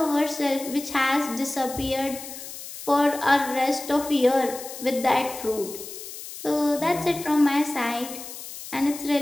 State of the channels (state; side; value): noise; left; hiss, 12 dB below the sound